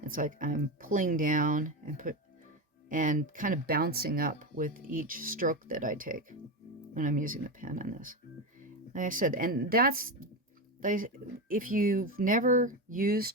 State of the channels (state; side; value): normal; both; correlation 0.16